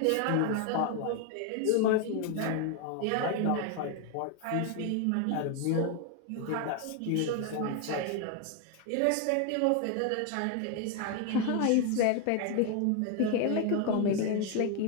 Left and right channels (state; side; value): different; both; correlation 0.01